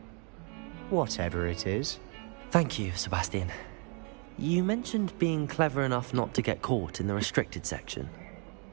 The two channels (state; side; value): quieter; left; 36.3 dB